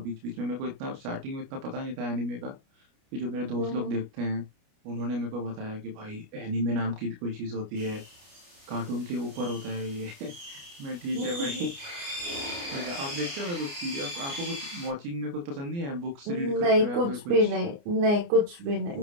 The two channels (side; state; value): left; late; 29 ms